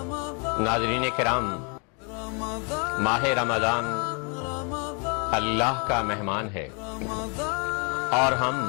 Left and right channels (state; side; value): quieter; right; 35.7 dB